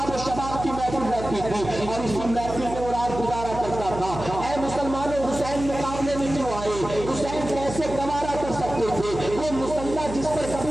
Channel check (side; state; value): right; noise; hum, 9 dB below the sound